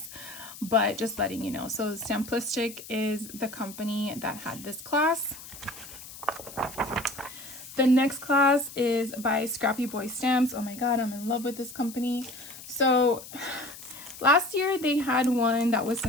but just letting you know. So Stamplistic is the company that had this class. The next class is by Scrappy Boy Stamps. Oh my god, I'm in love with this company. So last year they had one that was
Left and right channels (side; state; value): left; noise; hiss, 15 dB below the sound